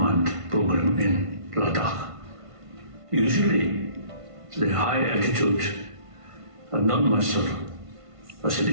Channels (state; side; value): late; left; 1.5 ms